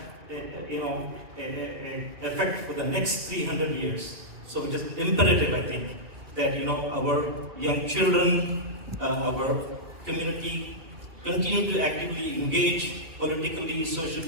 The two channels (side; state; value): left; late; 2.8 ms